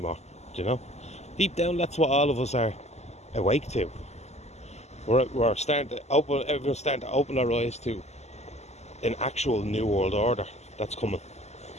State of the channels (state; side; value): late; right; 0.32 ms